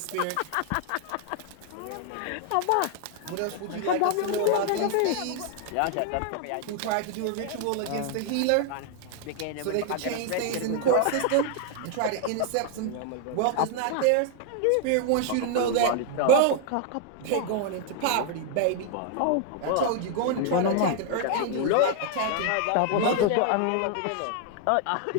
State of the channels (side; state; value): both; different; correlation 0.00